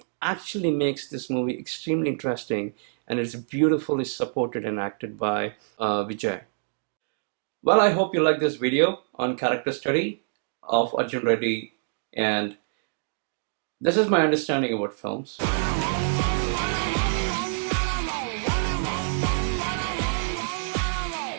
actually makes this movie extremely interesting, and it's beautifully supported and acted by Vijay. Well, I hope you like this video on character study of Arjun Reddy, and this is my understanding about films.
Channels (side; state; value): left; silent; digital silence